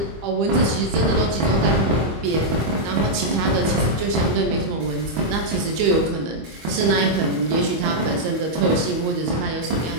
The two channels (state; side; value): late; left; 25 ms